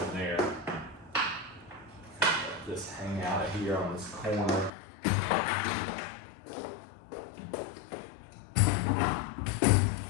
there. Just hang out of here on this corner.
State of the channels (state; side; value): drops out; right; at 4.7 s